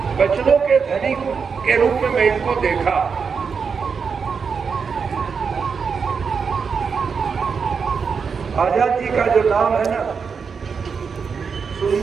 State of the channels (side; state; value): left; quieter; 5.8 dB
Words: वचनों के धनी के रूप में मैं इनको देखा। आजाद जी का जो नाम है ना,